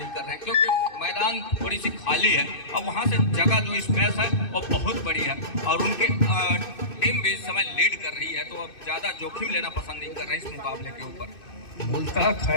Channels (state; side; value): late; right; 2.6 ms